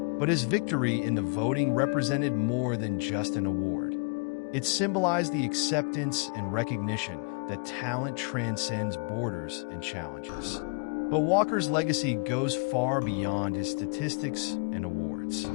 but his victory in the voting represented more than just an award. It symbolized the acceptance and recognition that talent transcends borders and challenges. But Walker's legacy goes far beyond his statistics and awards.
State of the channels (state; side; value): quieter; right; 36.3 dB